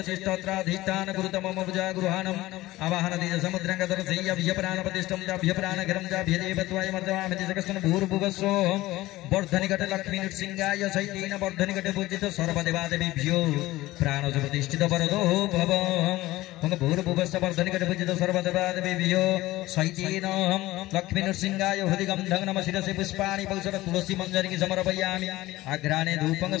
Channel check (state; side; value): quieter; right; 17.6 dB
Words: तिष्ठत्राधिष्ठान कुरुत मम भुजागृहाणम् आवाहनति समुद्रं गतरसय्यभ्य प्राणप्रतिष्ठं चाभ्य प्राणगिरं चाभ्य देवत्वाय मर्जयामि तिष्ठकस्तन भूर्भुवस्सो वर्धनिकट लक्ष्मी नृसिंहाय सहितेन वर्धनिकट पूजित सर्वदेवादेवीभ्यो प्राणज प्रतिष्ठित वरदो भव ओं भूर्भुवस्सो वर्धनिकट पूजित सर्वदेवादेवीभ्यो सहितेन लक्ष्मी नृसिंहाय हृदिगन्धं नमः शिरसि पुष्पाणि पौषध तुलसी मञ्जरी समर्पयामि अग्राणे धूपं